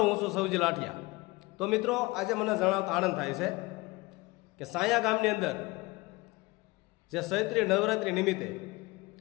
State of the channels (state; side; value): quieter; right; 23.0 dB